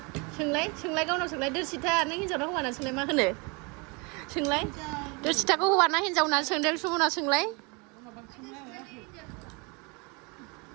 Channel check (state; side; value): quieter; left; 30.0 dB